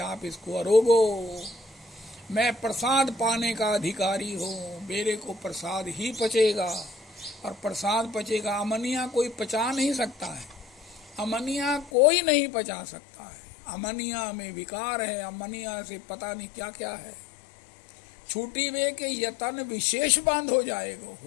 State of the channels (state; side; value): drops out; right; at 11.9 s